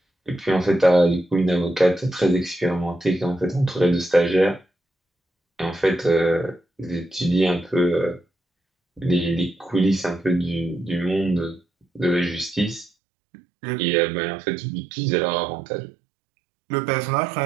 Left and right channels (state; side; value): drops out; left; at 12.9 s